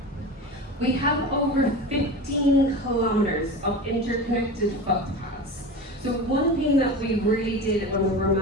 We have over 15 kilometers of interconnected footpaths. So one thing that we really did when we were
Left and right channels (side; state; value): both; normal; correlation 0.29